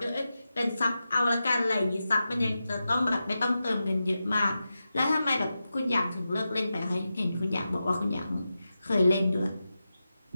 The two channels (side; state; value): both; inverted; correlation -0.91